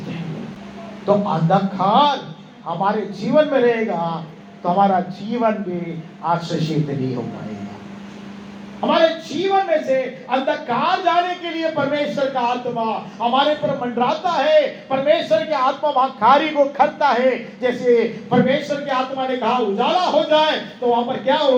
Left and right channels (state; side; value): identical; both; correlation 1.00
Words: हैं। तो अंधकार हमारे जीवन में रहेगा तो हमारा जीवन भी आशीषित नहीं हो पाएगा। हमारे जीवन में से अंधकार जाने के लिए परमेश्वर का आत्मा हमारे पर मंडराता है। परमेश्वर की आत्मा वहां कार्य को करता है। जैसे परमेश्वर की आत्मा ने कहा उजाला हो जाए, तो वहां पर क्या